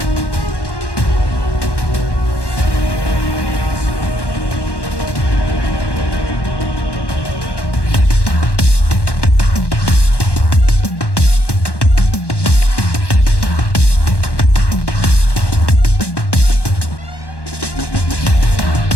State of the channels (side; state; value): right; late; 1.1 ms